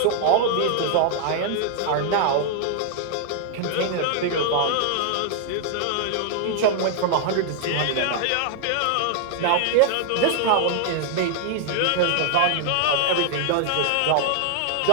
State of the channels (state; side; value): different; both; correlation 0.00